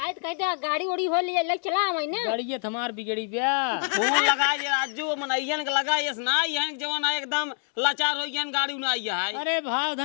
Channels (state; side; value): silent; right; 61 dB below the other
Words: तो कहते गाड़ी उड़ी हो लिया लग चला हमारी ना। गाड़ी हमार बिगड़ी ब्या। फोन लगा ये राजू मनैयन के लगा ये ना ये जवान है एकदम लाचार हो गया गाड़ी उना आइया है। अरे भाव